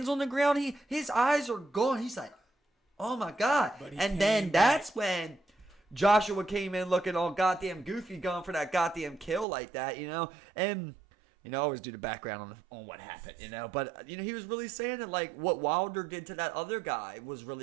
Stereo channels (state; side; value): drops out; left; at 9.5 s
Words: on the ground, his eyes are gone. He's like, oh my God. And then that's when Joshua came in looking all goddamn goofy, going for that goddamn kill like that, And, I always do the background on what happened, But, he was really saying that, like, what Wilder did to that other guy was